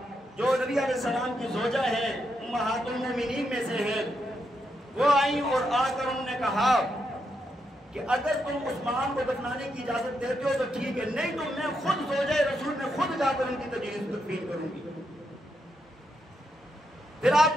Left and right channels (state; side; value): normal; both; correlation 0.82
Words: جو نبی علیہ السلام کی زوجہ ہیں، امہات المومنین میں سے ہیں، وہ آئیں اور آ کر انہوں نے کہا کہ اگر تم عثمان کو دفنانے کی اجازت دیتے ہو تو ٹھیک ہے، نہیں تو میں خود زوجہ رسول میں خود جا کر ان کی تدفین کروں گی۔ پھر